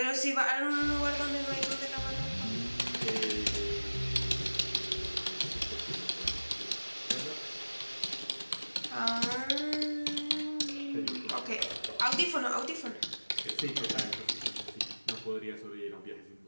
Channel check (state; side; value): inverted; both; correlation -1.00